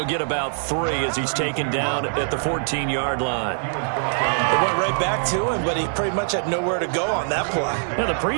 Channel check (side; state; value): left; silent; digital silence